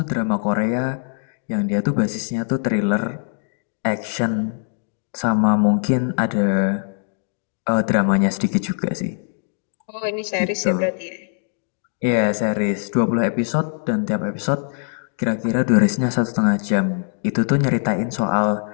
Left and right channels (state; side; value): silent; right; digital silence